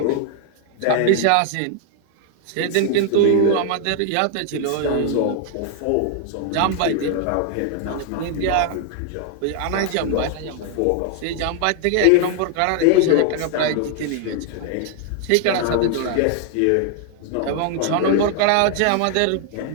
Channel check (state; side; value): different; both; correlation 0.00